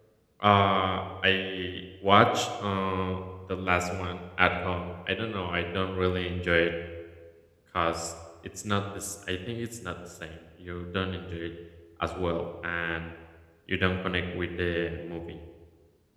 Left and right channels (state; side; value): identical; both; correlation 1.00